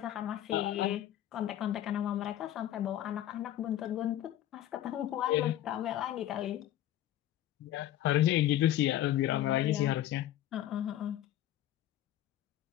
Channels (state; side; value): quieter; right; 12.6 dB